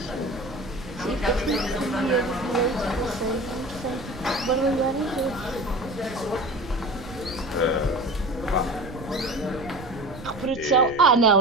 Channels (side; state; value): right; noise; rumble, 15 dB below the sound